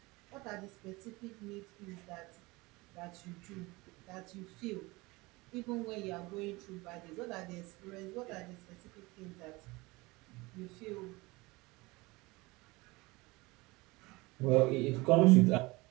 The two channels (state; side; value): quieter; left; 23.0 dB